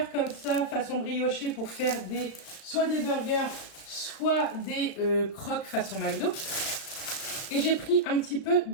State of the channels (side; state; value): right; late; 36 ms